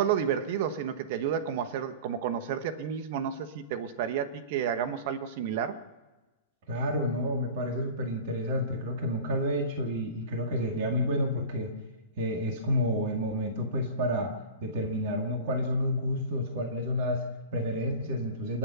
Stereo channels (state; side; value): inverted; both; correlation -0.33